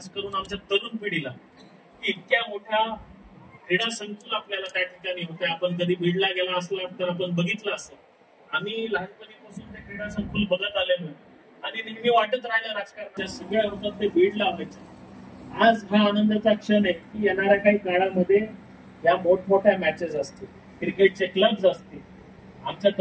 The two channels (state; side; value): identical; both; correlation 1.00